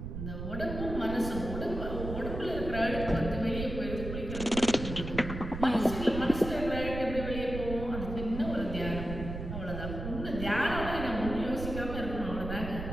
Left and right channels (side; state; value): right; noise; rumble, 6 dB below the sound